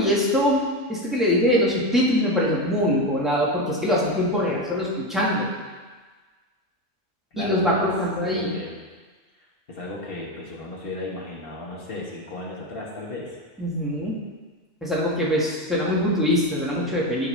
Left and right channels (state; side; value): normal; both; correlation 0.16